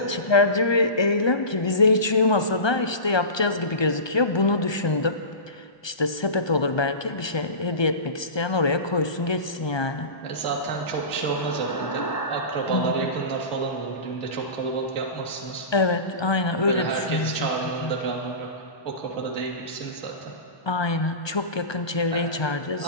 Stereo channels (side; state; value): right; late; 1.2 ms